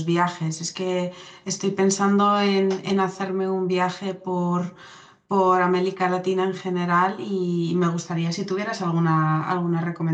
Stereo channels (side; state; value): both; identical; correlation 1.00